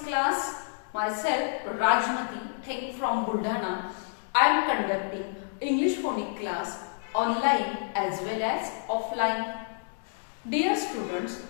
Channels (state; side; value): silent; right; digital silence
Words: class. Myself Rajmati Theng from Buldhana. I am conducting English phonics class online as well as offline. Dear students,